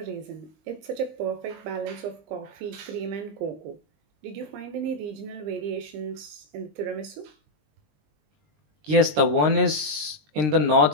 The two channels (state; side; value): late; left; 20 ms